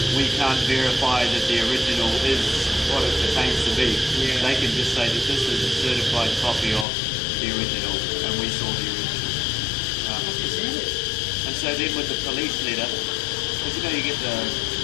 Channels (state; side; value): drops out; right; at 6.9 s